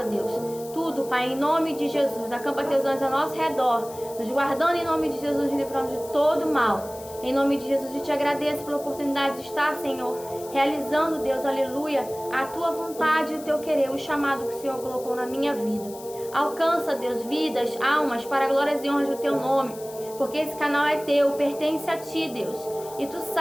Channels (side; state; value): left; noise; hiss, 17 dB below the sound